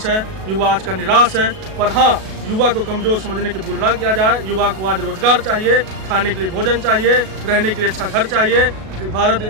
है, युवा आज का निराश है। पर हाँ, युवा को कमजोर समझने की भूल ना किया जाए। युवा को आज रोजगार चाहिए, खाने के लिए भोजन चाहिए, रहने के लिए अच्छा घर चाहिए।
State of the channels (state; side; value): late; left; 37 ms